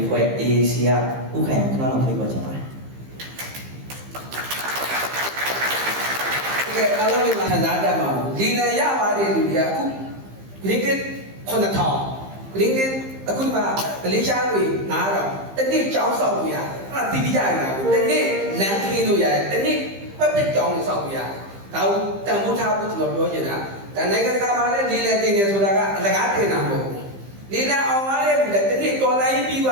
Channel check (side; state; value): left; late; 15 ms